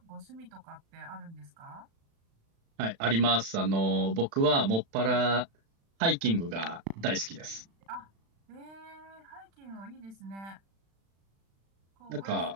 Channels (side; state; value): left; late; 36 ms